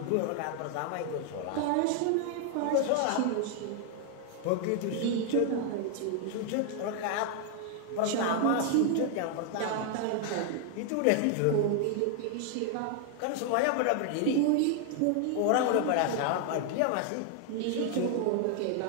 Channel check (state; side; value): different; both; correlation 0.00